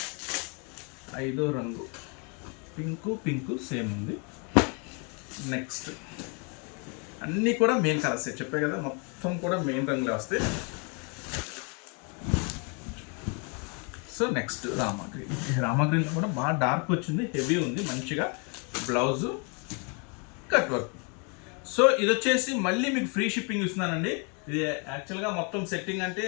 ఐదో రంగు పింకు సేమ్ ఉంది. నెక్స్ట్ అన్నీ కూడా మెయిన్ కలర్స్ చెప్పే కదా, మొత్తం కూడా మెయిన్ రంగులే వస్తాయి. సో నెక్స్ట్ రామా గ్రీన్లో కూడా బాగా డార్క్ వచ్చింది, హెవీ ఉంది మంచిగా. Blouse cut work. సో ఇది వచ్చేసి మళ్ళీ మీకు ఫ్రీ షిప్పింగ్ ఇస్తున్నానండి. ఇది యాక్చువల్గా మొత్తం సెట్టింగ్ అంటే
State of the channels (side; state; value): right; quieter; 35.5 dB